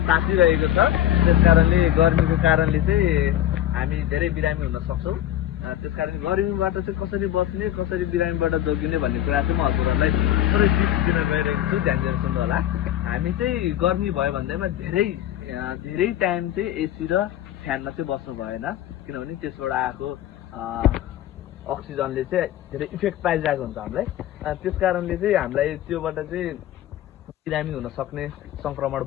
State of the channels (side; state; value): right; quieter; 12.5 dB